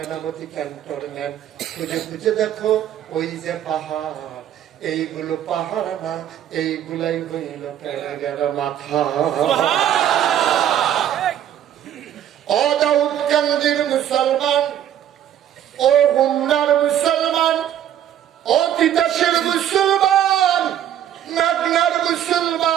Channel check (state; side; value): quieter; left; 10.7 dB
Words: ক্যান্টনমেন্ট। খুঁজে খুঁজে দেখো ওই যে পাহাড়, এইগুলো পাহাড় না, এইগুলাই হইল প্যারেকের মাথা। ও দাউদকান্দির মুসলমান, ও গুমনার মুসলমান, ও তিতাসের মুসলমান, নাগনার